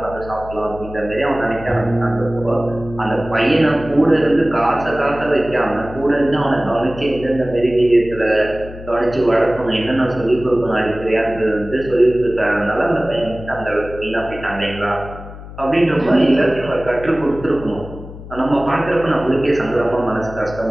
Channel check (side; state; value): left; noise; hum, 14 dB below the sound